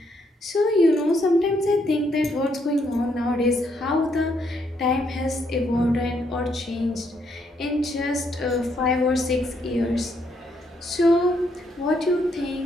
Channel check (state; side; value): normal; both; correlation 0.74